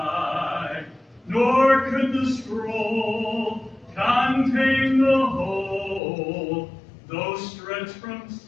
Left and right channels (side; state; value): right; drops out; at 6.0 s